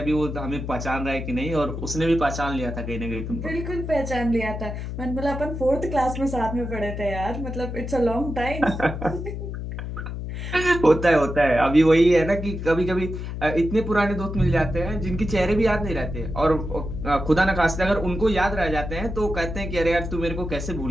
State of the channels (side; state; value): left; noise; hum, 6 dB below the sound